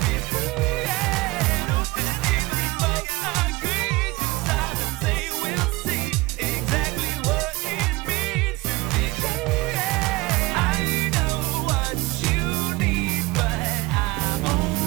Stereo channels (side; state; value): left; quieter; 21.9 dB